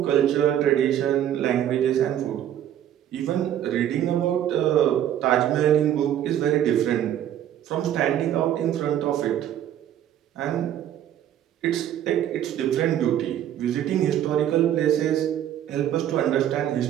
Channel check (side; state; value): left; quieter; 11.0 dB